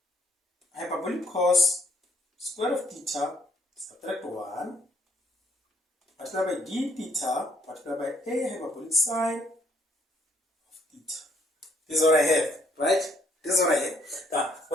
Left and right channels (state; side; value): normal; both; correlation 0.67